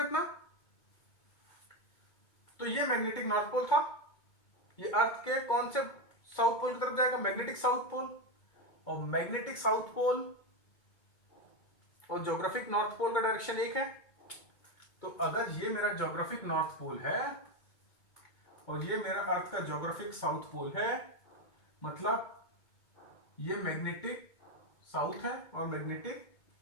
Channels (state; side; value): late; right; 2.2 ms